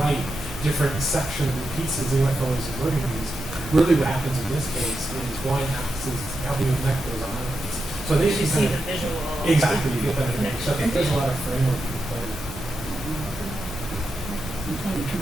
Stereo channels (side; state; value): both; normal; correlation 0.87